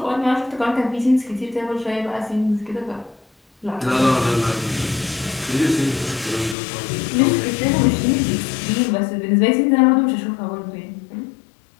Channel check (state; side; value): drops out; right; at 6.6 s